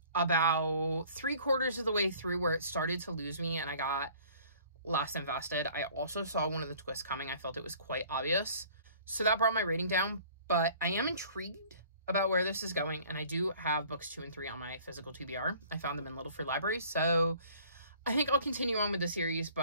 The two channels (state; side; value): inverted; both; correlation -0.52